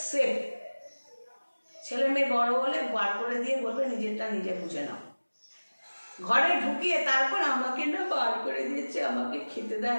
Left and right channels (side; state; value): both; inverted; correlation -1.00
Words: সেফ। ছেলে মেয়ে বড় হলে বার করে দিয়ে বলবে নিজেরটা নিজে বুঝে নাও। ঘরে ঢুকিয়ে তারপর আমাকে না বার করে দিয়েছে, আমাকে খেতে দেয়